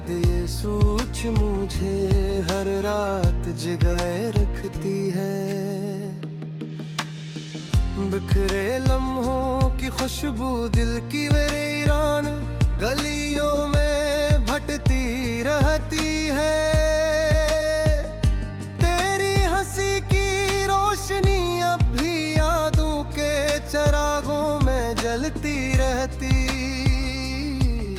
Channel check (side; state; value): both; identical; correlation 1.00